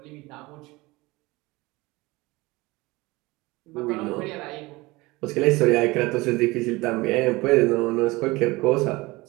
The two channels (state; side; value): quieter; left; 22.0 dB